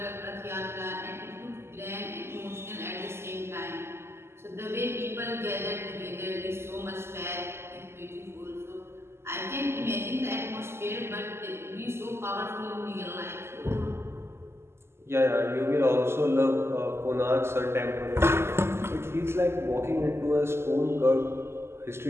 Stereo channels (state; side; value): late; left; 0.12 ms